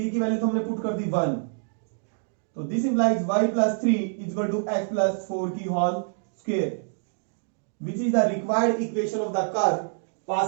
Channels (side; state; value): left; silent; digital silence